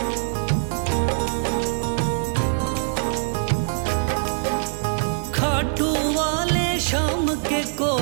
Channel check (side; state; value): left; silent; digital silence